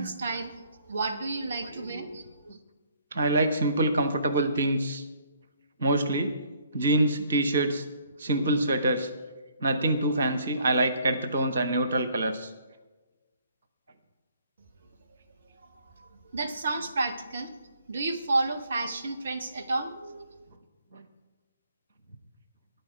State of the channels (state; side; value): inverted; both; correlation -0.63